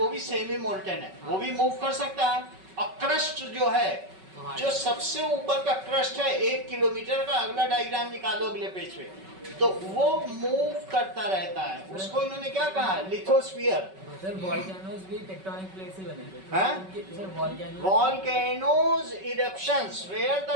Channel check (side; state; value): left; late; 5.3 ms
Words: भी सेमी मोल्टन है, वो भी मूव कर सकता है। और क्रस्ट जो है, जो सबसे ऊपर का क्रस्ट है 1 किलोमीटर का, अगला डायग्राम निकालो अगले पेज पे, तो वो मूव करता रहता है। उसको इन्होंने क्या कहा? लिथोस्फीयर। सर वॉल्केनोज भी टेक्टोनिक प्लेट से बने थे। हैं? Sir volcanoes eruptions where the